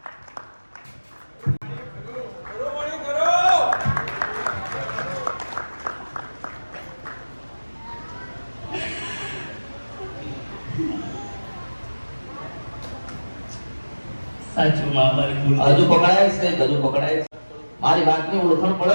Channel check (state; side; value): inverted; both; correlation -1.00